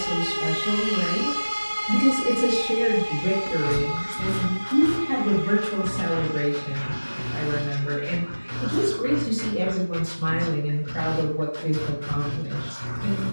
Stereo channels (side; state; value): both; inverted; correlation -1.00